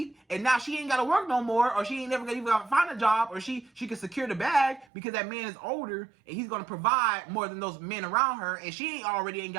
and now she ain't got to work no more, or she ain't never gonna even find a job, or she can secure the bag because that man is older and he's gonna provide more than those men around her, and she ain't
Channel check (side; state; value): left; drops out; at 4.9 s